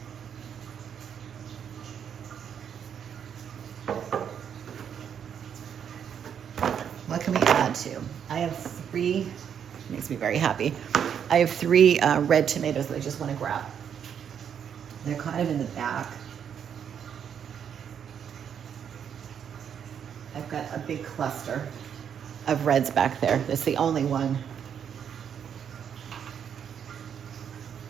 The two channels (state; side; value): quieter; left; 8.2 dB